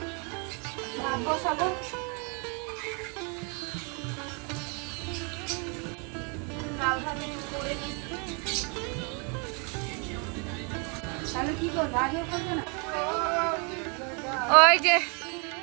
ভাত বসাবো। ডাল ভাত একটু করে নিচ্ছি। তাহলে কি করবো, আজও করবে না? ওই যে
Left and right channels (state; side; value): quieter; left; 34.9 dB